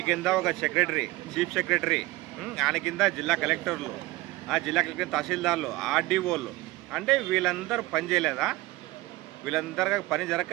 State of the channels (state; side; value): quieter; left; 19.2 dB